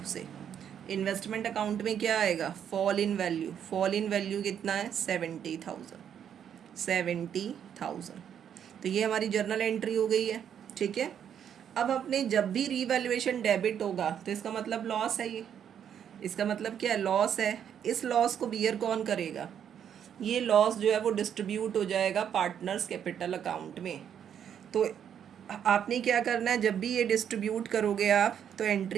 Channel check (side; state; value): left; quieter; 8.8 dB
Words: से। इन्वेस्टमेंट अकाउंट में क्या आएगा, fall in value, fall in value कितना है, 70,000, 70,000। तो ये हमारी जर्नल एंट्री हो गई है, ठीक है। अब अपने जब भी रीवैल्यूएशन डेबिट होगा तो इसका मतलब लॉस है, ये इसका मतलब क्या है, लॉस है। इस लॉस को बियर कौन करेगा, ये लॉस जो है वो डिस्ट्रीब्यूट हो जाएगा पार्टनर्स कैपिटल अकाउंट में। तो आपने क्या करना है, जब भी ये डिस्ट्रीब्यूट करोगे आप तो